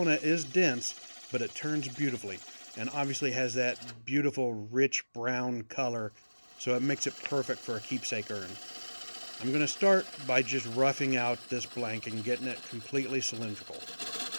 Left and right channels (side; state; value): both; inverted; correlation -1.00